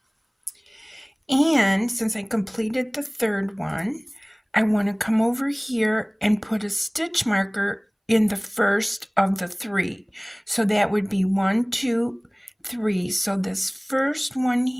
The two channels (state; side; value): identical; both; correlation 1.00